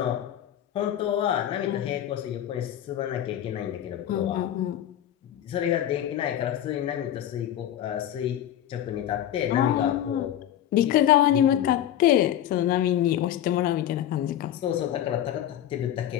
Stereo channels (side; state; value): right; quieter; 11.4 dB